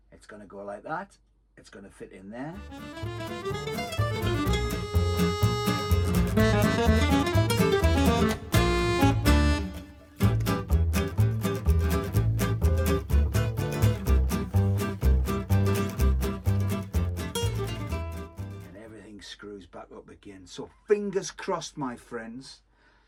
It's going to go like that. It's going to fit in there. Screws back up again. So fingers crossed, my friends.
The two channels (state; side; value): identical; both; correlation 1.00